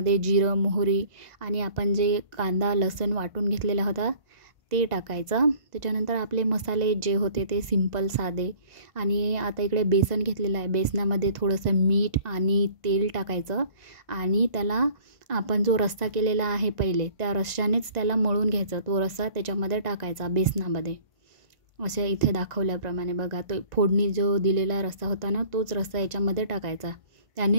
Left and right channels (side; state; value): left; late; 1.9 ms